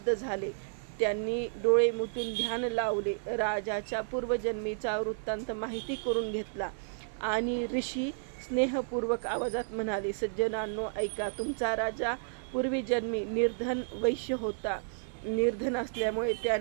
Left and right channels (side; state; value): left; silent; 57 dB below the other